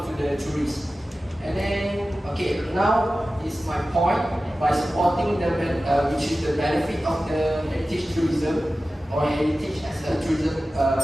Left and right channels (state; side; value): normal; both; correlation 0.95